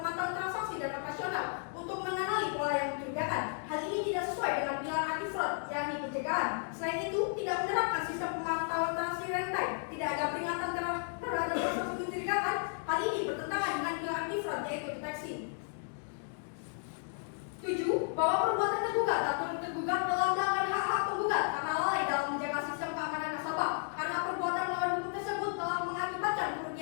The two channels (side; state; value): right; silent; 55 dB below the other